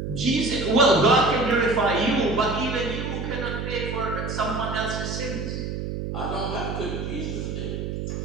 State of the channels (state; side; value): noise; right; hum, 4 dB below the sound